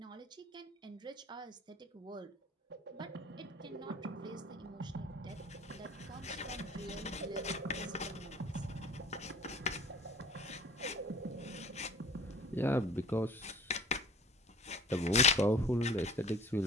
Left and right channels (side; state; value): both; normal; correlation 0.49